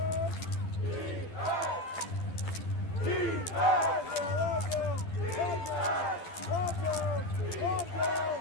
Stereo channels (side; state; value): right; late; 12 ms